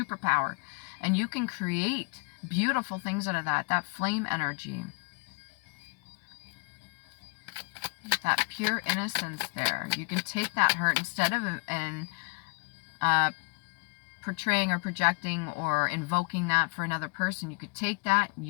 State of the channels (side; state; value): right; quieter; 34.6 dB